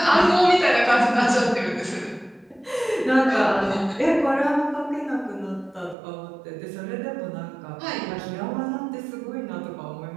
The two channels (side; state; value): left; drops out; at 6.0 s